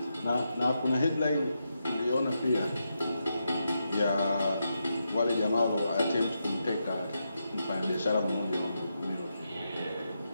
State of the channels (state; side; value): inverted; both; correlation -0.85